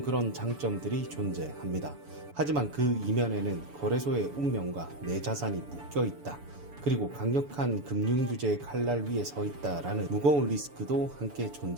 그런 장점들이 존재합니다. 하지만 그 이면에는 거래소의 운명과 내 자산이 묶여있다, 그리고 강력한 금융규제의 칼날 위에 서 있다라는 무거운 리스크도 함께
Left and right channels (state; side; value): late; left; 7.0 ms